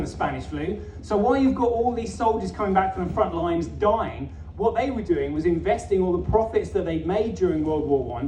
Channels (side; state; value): both; identical; correlation 1.00